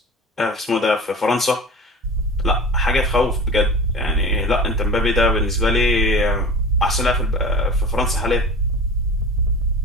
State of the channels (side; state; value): both; normal; correlation 0.35